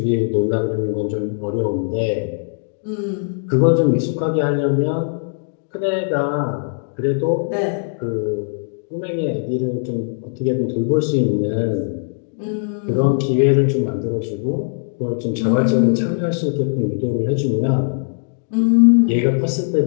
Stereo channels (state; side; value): silent; right; digital silence